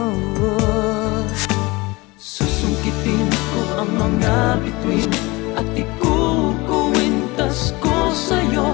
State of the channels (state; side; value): quieter; right; 23.3 dB